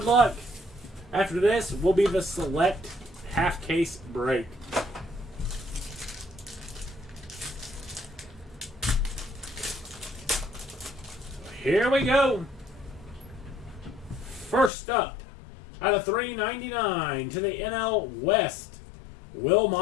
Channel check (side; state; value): right; drops out; at 14.7 s